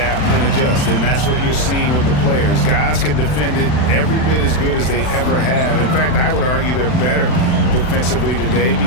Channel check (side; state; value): right; late; 40 ms